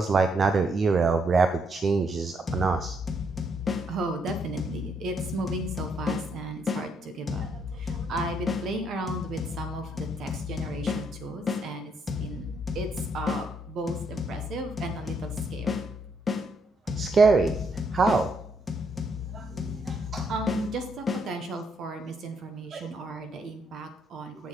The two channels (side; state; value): both; normal; correlation 0.74